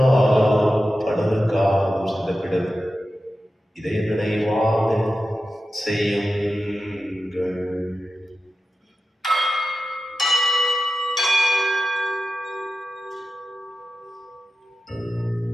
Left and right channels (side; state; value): both; normal; correlation 0.93